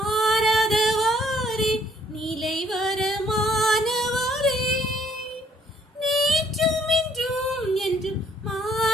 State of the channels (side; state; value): both; normal; correlation 0.64